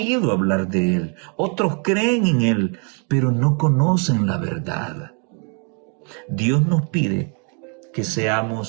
hablar de Él, otros creen en Él, pero no conocen la verdad. Dios nos pide que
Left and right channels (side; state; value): left; quieter; 37.7 dB